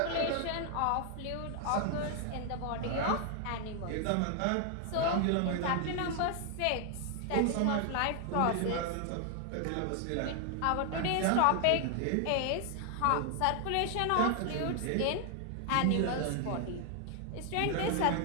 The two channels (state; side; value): different; both; correlation 0.00